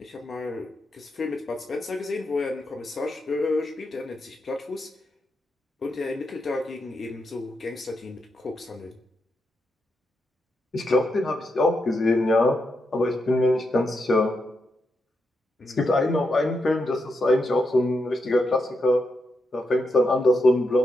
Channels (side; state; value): both; normal; correlation 0.84